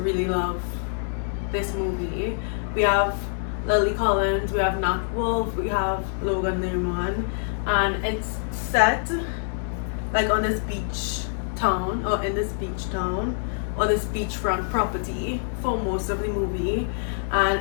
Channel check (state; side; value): silent; right; digital silence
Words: really love this movie. We have Lily Collins, we have Nat Wolff, we have Logan Lerman, and it's set like on this beach town, or in this beach town, or this beachfront property for most of the movie,